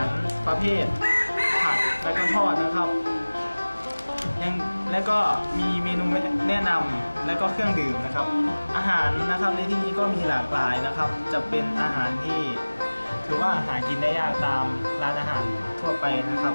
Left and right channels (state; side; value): inverted; both; correlation -1.00